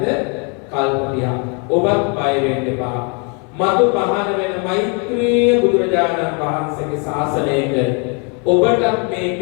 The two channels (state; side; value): quieter; right; 35.3 dB